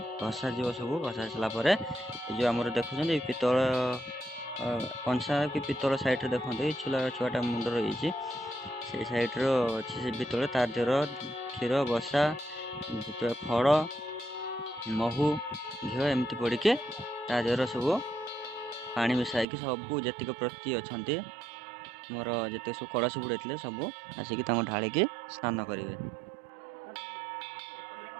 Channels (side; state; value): left; drops out; at 19.5 s